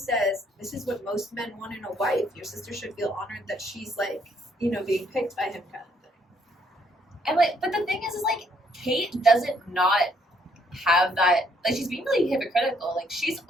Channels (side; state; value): both; normal; correlation 0.68